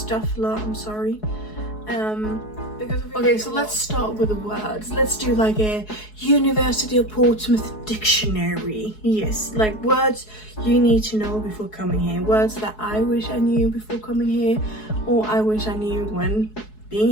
a lot, I'm sorry. Okay, so let's start with the words. Let's do like a University of Portsmouth dictionary. Yes, like words you need to know before coming here. Words that I wish I knew before coming here, or I wish I knew when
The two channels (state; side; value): late; right; 4.7 ms